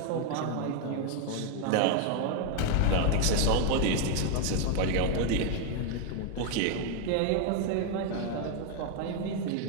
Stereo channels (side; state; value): both; different; correlation 0.01